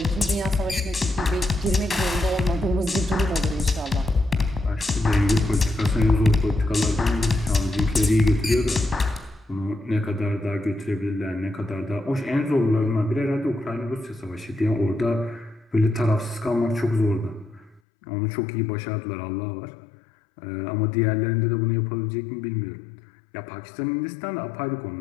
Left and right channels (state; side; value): drops out; right; at 17.8 s